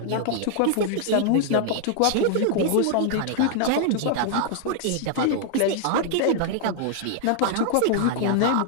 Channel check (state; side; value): different; both; correlation 0.00